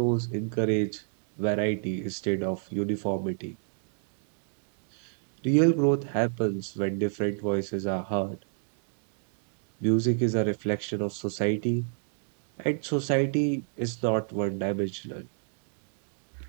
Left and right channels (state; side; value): silent; left; digital silence